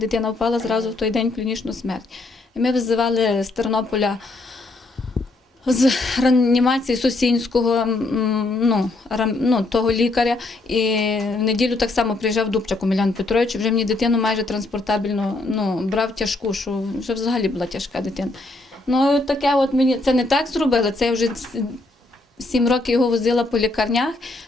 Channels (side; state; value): right; quieter; 3.0 dB